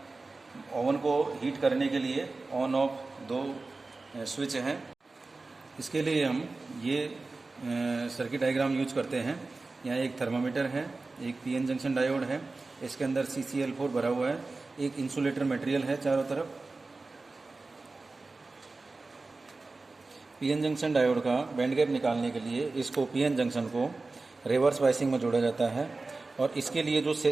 ओवन को हीट करने के लिए ऑन ऑफ 2 स्विच हैं। इसके लिए हम ये सर्किट डायग्राम यूज करते हैं। यहाँ एक थर्मामीटर है, एक पीएन जंक्शन डायोड है, इसके अंदर CCl4 भरा हुआ है, एक इंसुलेटर मटेरियल है चारों तरफ। पीएन जंक्शन डायोड का बैंड गैप निकालने के लिए इसको पीएन जंक्शन को रिवर्स बायसिंग में जोड़ा जाता है और इसके लिए जो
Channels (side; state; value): left; quieter; 3.5 dB